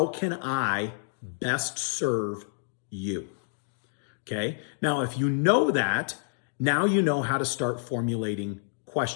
can I best serve you? Okay. Now, if you know that, now you know how to start formulating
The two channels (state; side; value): silent; right; digital silence